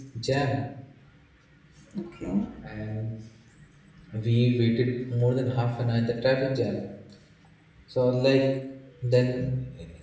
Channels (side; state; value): both; identical; correlation 1.00